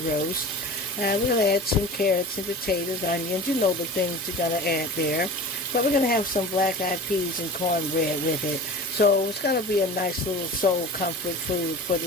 roast. We're going to add some carrots and potatoes, onions. You know the things you're going to add there. But we're going to have some black-eyed peas and cornbread with it. So it's going to be a nice little soul comfort food for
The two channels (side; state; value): both; normal; correlation 0.35